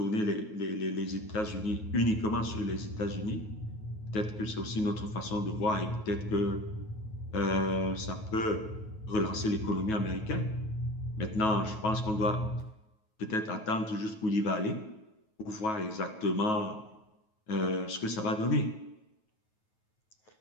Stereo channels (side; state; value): right; late; 9.3 ms